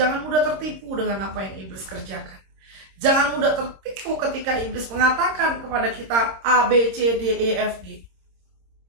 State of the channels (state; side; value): late; left; 26 ms